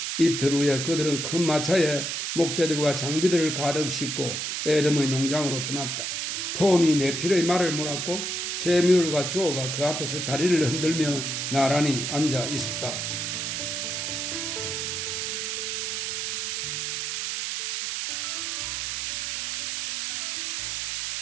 이틀 후에 그들은 큰 마차에 목재들과 장비들을 가득 싣고 에덤의 농장으로 떠났다. 톰이 네필의 말을 물었고 세미월과 조가 그 앞에서 다리를 흔들며 나란히 앉아 있었다.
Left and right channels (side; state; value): right; noise; hiss, 2 dB below the sound